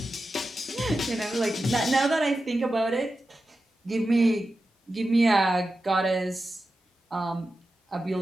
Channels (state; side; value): normal; both; correlation 0.92